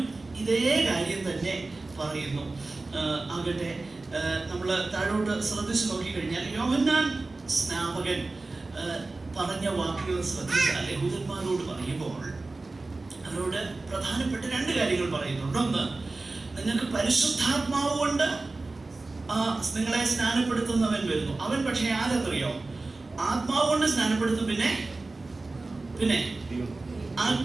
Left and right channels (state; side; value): quieter; left; 3.3 dB